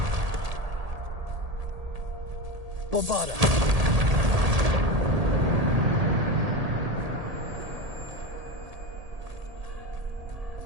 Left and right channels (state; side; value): late; left; 1.8 ms